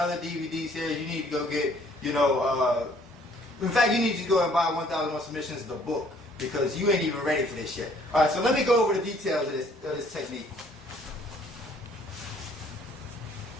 DVD series. You need to go get, in fact, you need to go and buy 1001 Submissions, the book, because you ain't even ready for this shit. All right, so let me go over the details of this technique.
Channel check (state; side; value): normal; both; correlation 0.60